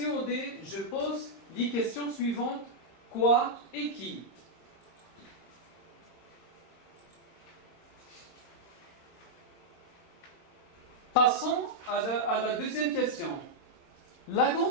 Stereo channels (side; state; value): right; late; 26 ms